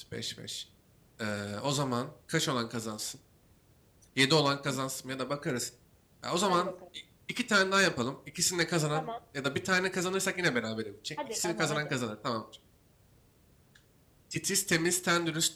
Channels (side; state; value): both; identical; correlation 1.00